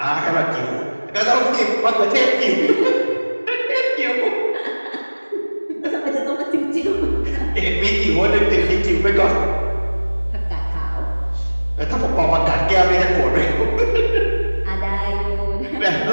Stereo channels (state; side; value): inverted; both; correlation -1.00